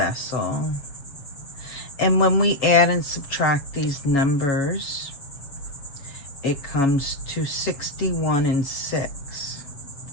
And when we add and subtract these numbers, it comes to 61 and 6.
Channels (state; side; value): late; right; 7.2 ms